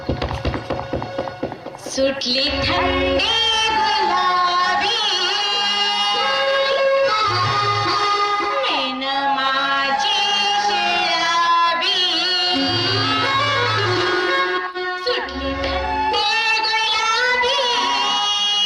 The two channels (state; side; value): identical; both; correlation 1.00